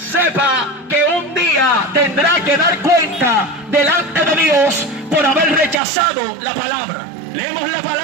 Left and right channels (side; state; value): left; drops out; at 5.8 s